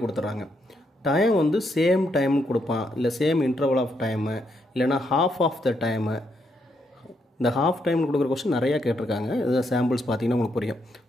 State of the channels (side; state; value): both; normal; correlation 0.77